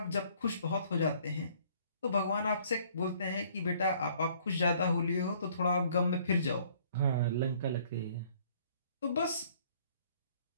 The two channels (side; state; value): both; inverted; correlation -0.59